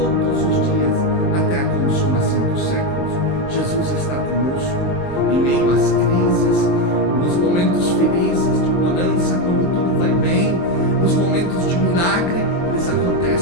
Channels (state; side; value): late; right; 23 ms